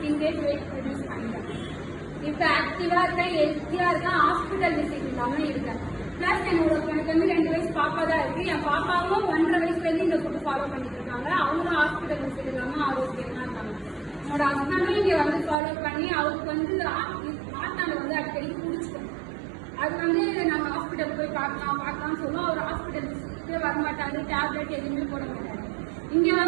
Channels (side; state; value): left; drops out; at 15.6 s